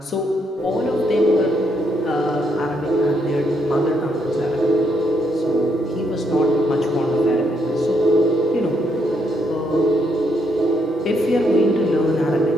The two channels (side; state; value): both; normal; correlation 0.75